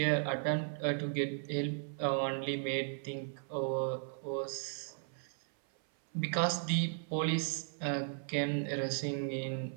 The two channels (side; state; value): left; silent; 54 dB below the other